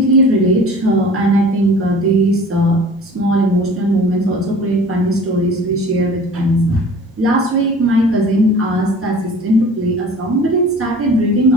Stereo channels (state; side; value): normal; both; correlation 0.44